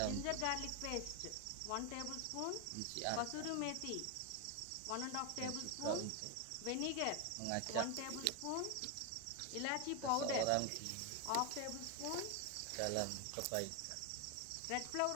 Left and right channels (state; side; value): different; both; correlation 0.01